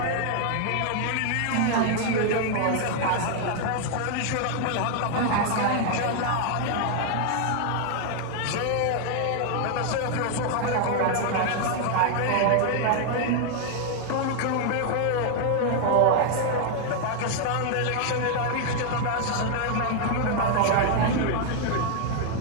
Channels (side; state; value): both; different; correlation 0.00